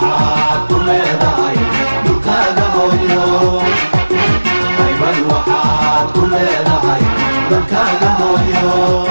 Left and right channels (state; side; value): inverted; both; correlation -1.00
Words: ku leedahay dhulkaaga hooyo haybad waxaad ku leedahay dalkaaga hooyo